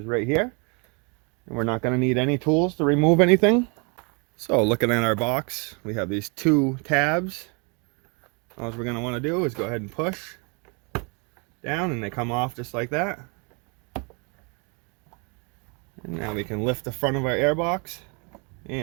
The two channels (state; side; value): quieter; left; 33.2 dB